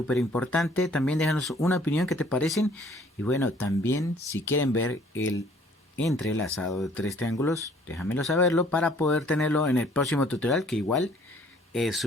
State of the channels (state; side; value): normal; both; correlation 0.58